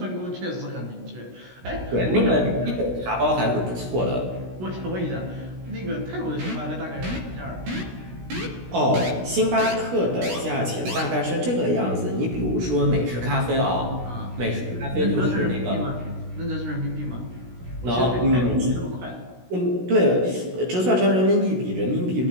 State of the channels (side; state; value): left; late; 16 ms